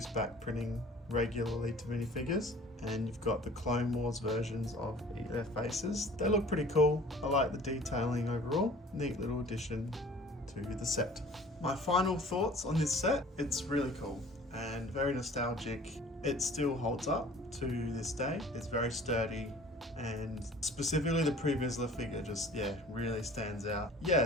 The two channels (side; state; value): both; normal; correlation 0.48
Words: back printing regularly to minifigures. And you've got the Clone Wars versions of their faces. They look pretty cool. I like the detailing overall. Neat little addition to the set. My final thoughts on this set: it's really cool and very nostalgic. It still holds up to this day. It's very sturdy, and specifically the Pre Vizsla figure just, really stands out. Yeah,